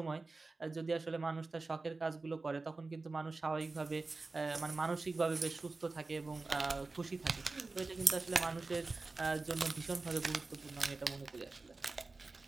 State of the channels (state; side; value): quieter; left; 3.6 dB